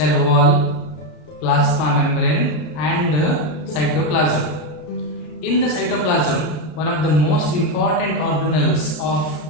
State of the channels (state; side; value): late; right; 33 ms